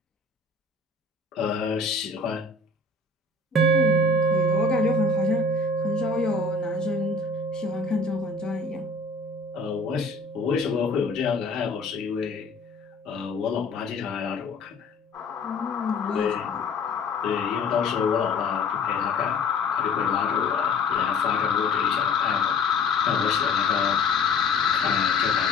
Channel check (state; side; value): quieter; right; 3.4 dB